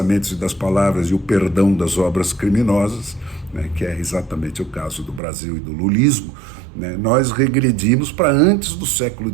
e das palavras e o perdão das obras criminosas, né, que é exatamente o caso do Brasil e do lulismo, né, nós regredimos para antes do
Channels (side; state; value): left; drops out; at 5.2 s